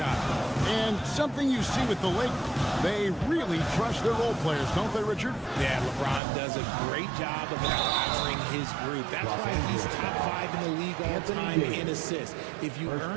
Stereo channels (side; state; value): left; drops out; at 6.2 s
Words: And something you see with the Lakers, they really trust their role players, don't they, Richard? Yeah, LeBron does a great job of empowering his group. That's why he's top 5 in the league all time in assists. If you